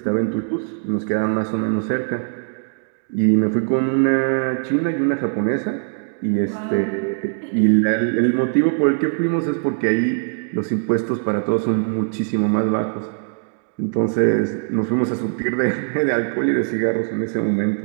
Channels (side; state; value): left; silent; digital silence